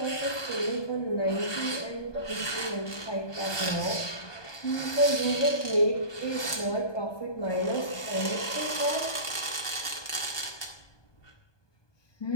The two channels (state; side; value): late; right; 1.2 ms